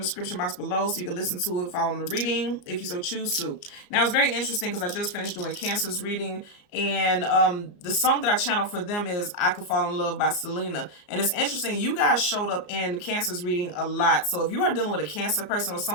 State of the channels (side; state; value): right; late; 34 ms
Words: description box below so you can listen to it following the reading if you so choose to. Now it's very interesting because I just finished doing Cancer's reading, and the song that I channeled for them is I Could Fall in Love by Selena. And it's interesting, you guys showed up in Cancer's reading a lot. So if you are dealing with a Cancer person or